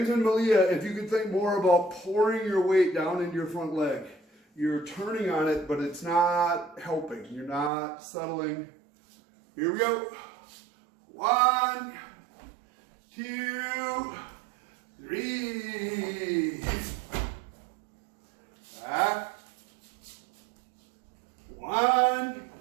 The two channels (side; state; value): left; drops out; at 7.7 s